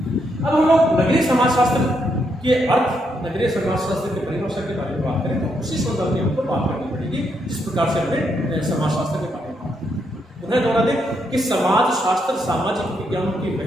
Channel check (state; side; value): normal; both; correlation 0.78